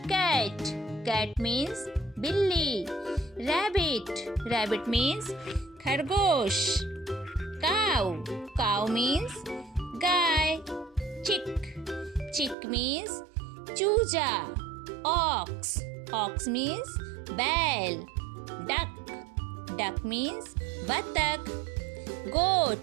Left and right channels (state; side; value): drops out; left; at 12.6 s